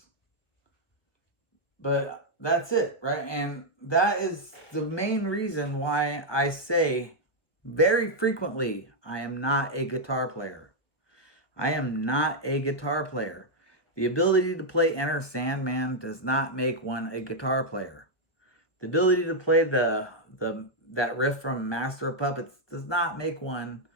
but that's it, right? And that is the main reason why I say very frequently I am not a guitar player. I am not a guitar player. The ability to play Enter Sandman does not make one a guitar player. The ability to play that riff from Master of Puppets does not make one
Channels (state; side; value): late; right; 1.3 ms